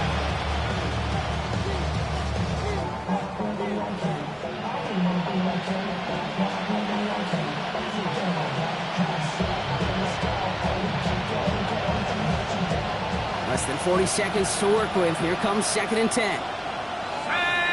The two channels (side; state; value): both; identical; correlation 1.00